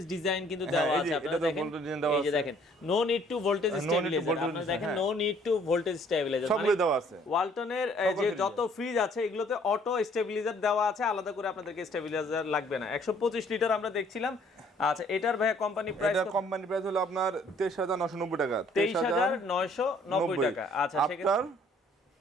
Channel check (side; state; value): both; normal; correlation 0.60